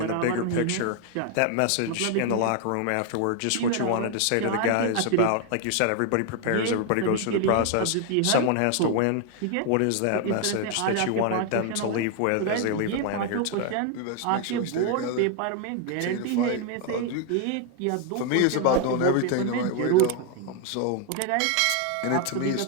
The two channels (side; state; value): both; different; correlation 0.00